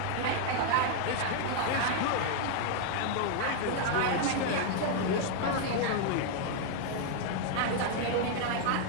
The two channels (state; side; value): different; both; correlation 0.00